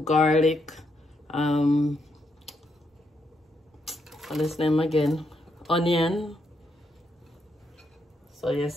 garlic, what's his name again? Onion. So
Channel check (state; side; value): normal; both; correlation 0.79